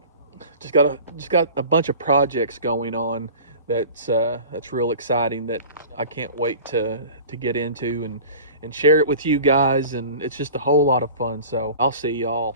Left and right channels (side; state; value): both; inverted; correlation -0.39